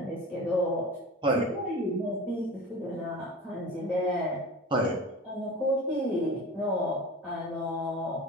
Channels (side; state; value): both; normal; correlation 0.35